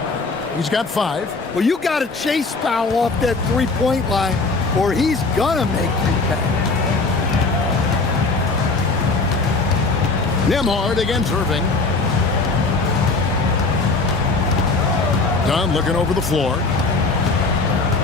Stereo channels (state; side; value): quieter; right; 3.8 dB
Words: He's got 5. Well, you got to chase Powell off that three-point line, or he's gonna make you pay. Nembhard against Irving. Dunn looking over the floor.